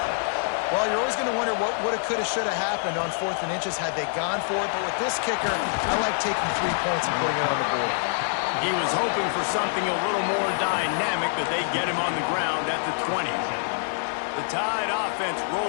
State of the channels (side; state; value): right; silent; digital silence